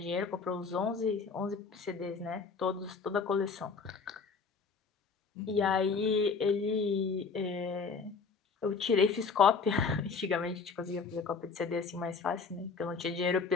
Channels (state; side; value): quieter; right; 5.0 dB